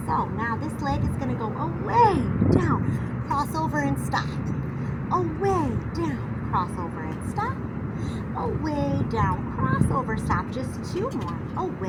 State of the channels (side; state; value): both; identical; correlation 1.00